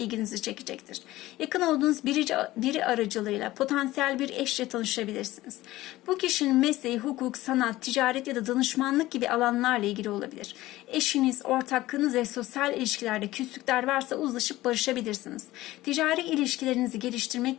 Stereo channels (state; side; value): quieter; right; 16.9 dB